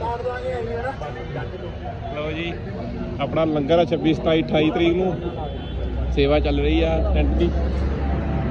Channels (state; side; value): identical; both; correlation 1.00